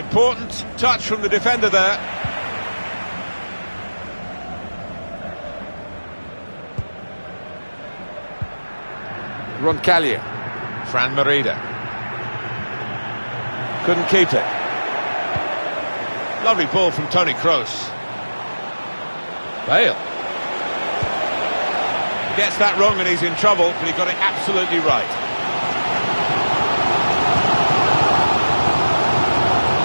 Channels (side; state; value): both; inverted; correlation -1.00